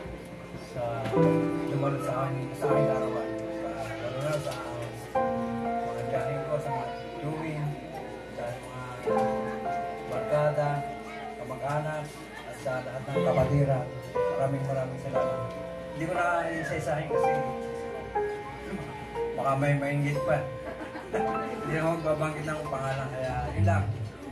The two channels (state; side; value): identical; both; correlation 1.00